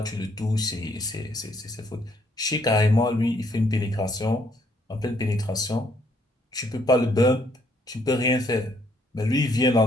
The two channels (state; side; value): normal; both; correlation 0.68